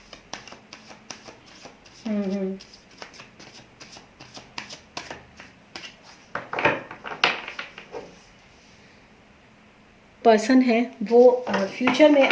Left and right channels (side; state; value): both; identical; correlation 1.00